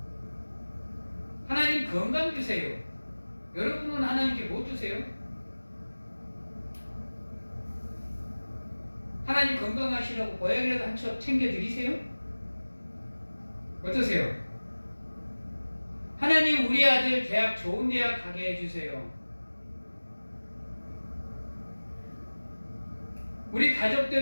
하나님 건강 주세요. 여러분은 하나님께 뭐 주세요? 하나님 건강하시라고 보약이라도 한 첩 챙겨드리세요? 어떠세요? 하나님 우리 아들 대학 좋은 대학 가게 해주세요. 우리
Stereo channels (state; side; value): inverted; both; correlation -1.00